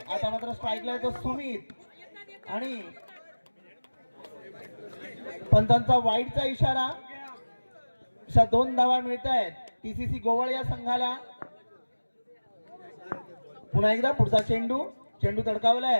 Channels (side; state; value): both; inverted; correlation -1.00